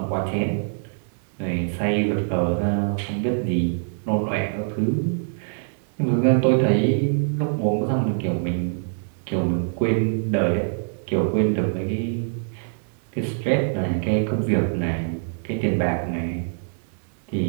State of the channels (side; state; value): left; silent; digital silence